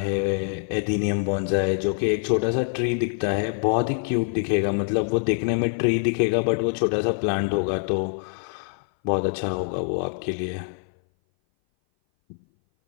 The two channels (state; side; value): silent; right; 58 dB below the other